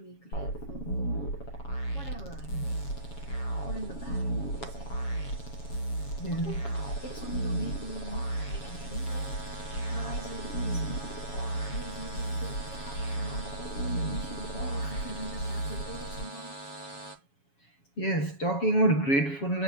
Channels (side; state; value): right; late; 7.2 ms